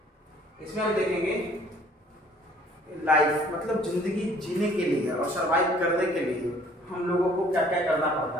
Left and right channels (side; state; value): both; normal; correlation 0.56